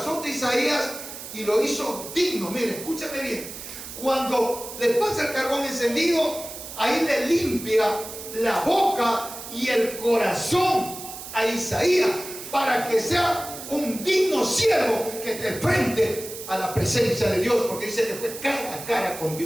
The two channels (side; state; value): right; noise; hiss, 11 dB below the sound